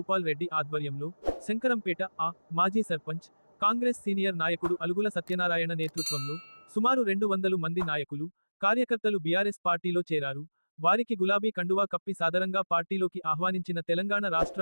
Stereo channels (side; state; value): both; inverted; correlation -1.00